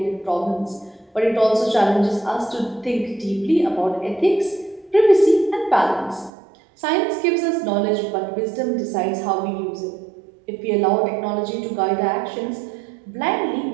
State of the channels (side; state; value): left; drops out; at 6.3 s